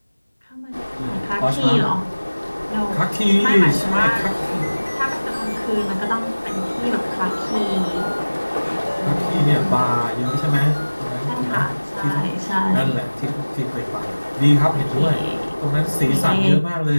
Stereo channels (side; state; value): both; inverted; correlation -1.00